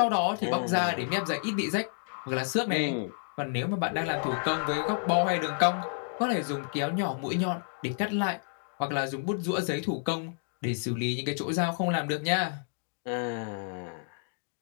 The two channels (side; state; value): right; silent; digital silence